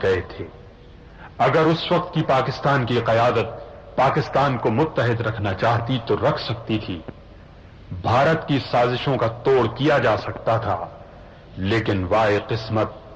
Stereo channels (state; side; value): identical; both; correlation 1.00